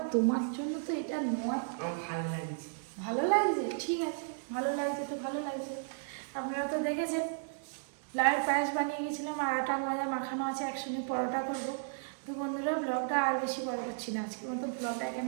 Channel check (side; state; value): left; silent; digital silence